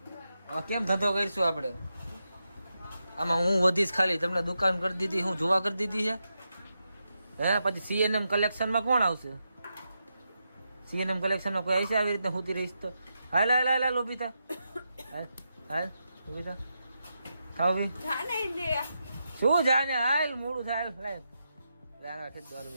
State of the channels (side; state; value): both; inverted; correlation -0.86